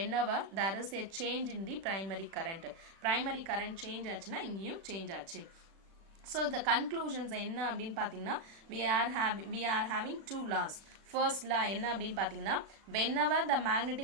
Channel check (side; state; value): left; late; 36 ms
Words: there is a change in the primary current. Primary current change ஆச்சுன்னா இங்கேயும் change ஆச்சு. So the conclusions என்ன அப்படின்னு பார்த்தீங்கன்னா we are having two laws. First law என்ன அப்படின்னு பார்த்தீங்கன்னா whenever the